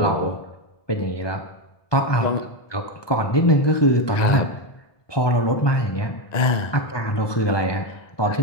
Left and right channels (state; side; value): late; right; 1.2 ms